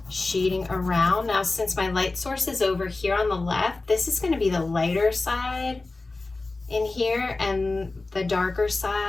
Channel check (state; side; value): quieter; right; 3.4 dB